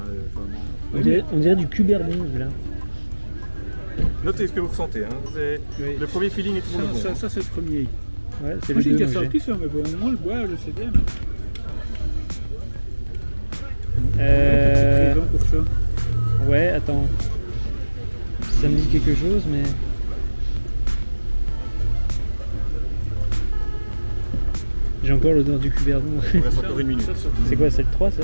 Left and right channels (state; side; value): inverted; both; correlation -1.00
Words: Hein, On dirait du cuberdon là. Notez ce que vous ressentez. Hein. Oui. Le premier feeling est toujours le bon. Ça c'est le premier. Ouais, c'est Moi le j'ai déjà 2 sorti ça, mais bon, moi le boire, je sais bien. Euh... Présent pour ça. Ouais, attends. Ça me dit quelque chose, mais... J'ai encore l'odeur du cuberdon. Il reste encore 1 minute. C'est quoi, c'est le 3 ça?